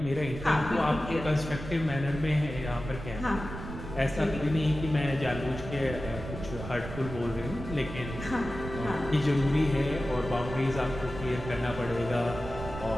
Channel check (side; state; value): right; noise; rumble, 9 dB below the sound